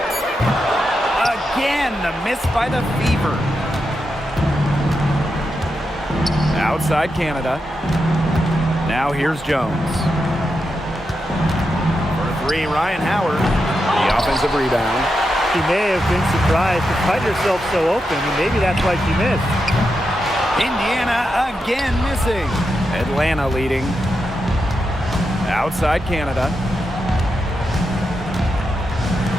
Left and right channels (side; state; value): both; normal; correlation 0.86